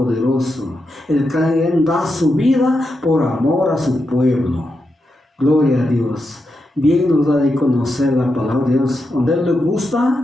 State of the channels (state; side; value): normal; both; correlation 0.86